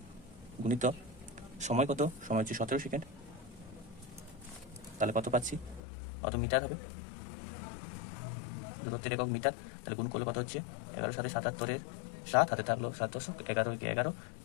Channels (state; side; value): drops out; right; at 5.8 s